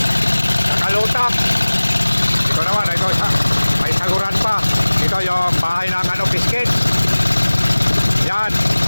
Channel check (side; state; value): both; inverted; correlation -1.00